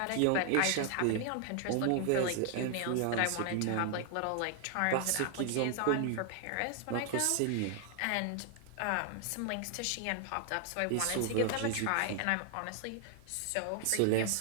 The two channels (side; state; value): both; different; correlation 0.00